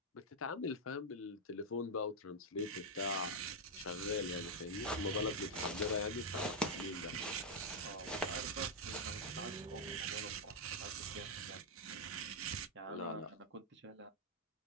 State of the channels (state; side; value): normal; both; correlation -0.01